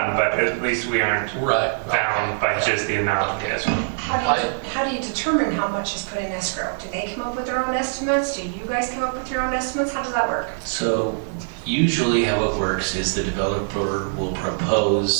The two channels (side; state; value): left; silent; digital silence